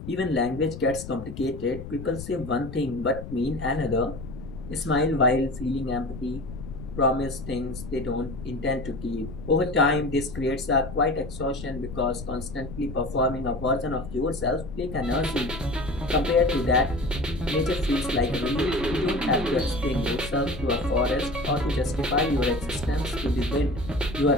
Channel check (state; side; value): noise; left; rumble, 11 dB below the sound